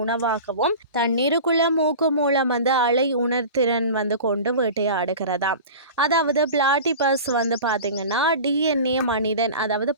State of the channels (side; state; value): both; inverted; correlation -0.35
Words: உணவாகவும் தண்ணீருக்குள்ள மூக்கு மூலம் அலை உணர்திறன் கொண்டு வேட்டையாடுகிறதா. அதாவது பிளாட்டிபஸ் பார்த்தீங்கன்னா டிஎன்ஏ மனிதன் அதாவது